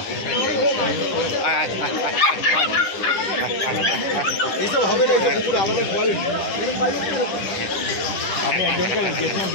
এইসব হবে না পুরো আলাদা কোয়ালিটি আমি একজনকে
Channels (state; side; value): late; right; 10 ms